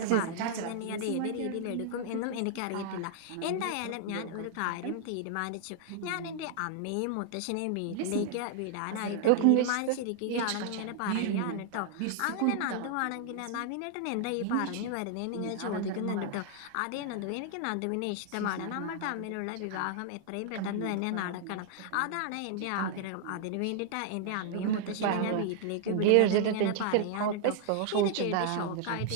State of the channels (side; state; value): both; different; correlation -0.01